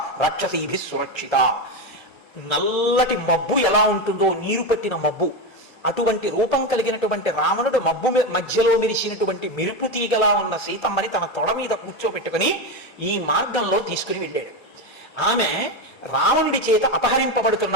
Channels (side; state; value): both; normal; correlation 0.14